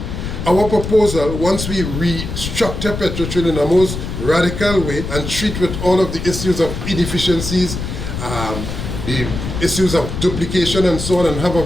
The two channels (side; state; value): left; noise; rumble, 6 dB below the sound